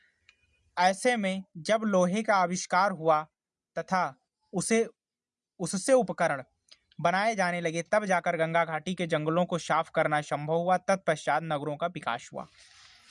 ऐसे में जब लोहे का आविष्कार हुआ तथा उससे उपकरण बनाए जाने लगे, तब जाकर गंगा घाटी के जंगलों को साफ करना संभव हुआ। तत्पश्चात नगरों का विकास हुआ।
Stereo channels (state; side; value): identical; both; correlation 1.00